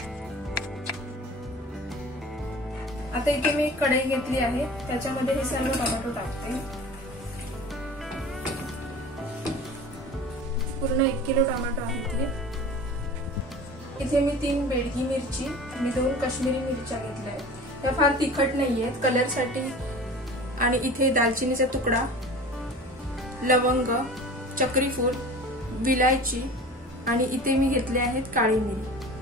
आता इथे मी एक कढई घेतली आहे, त्याच्यामध्ये हे सर्व टोमॅटो टाकते। पूर्ण 1 किलो टोमॅटो आहे इथे मी 3 बेडगी मिरची आणि 2 काश्मीरी मिरच्या घेतल्या आहेत। त्या फार तिखट नाहीयेत, कलर साठी। आणि इथे दालचिनीचा तुकडा, लवंग, चक्री फूल, विलायची आणि इथे मी घेतले आहेत काळी मिरी।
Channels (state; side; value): normal; both; correlation 0.39